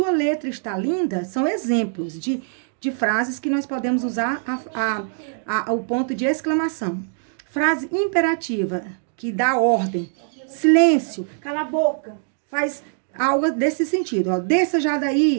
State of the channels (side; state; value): left; silent; digital silence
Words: letra está linda, são exemplos de frases que nós podemos usar o ponto de exclamação. Frase imperativa, que dá ordem, silêncio, cala a boca, faz algo desse sentido, ó, desça já